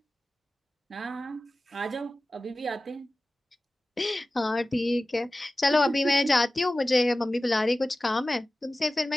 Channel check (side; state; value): both; normal; correlation 0.96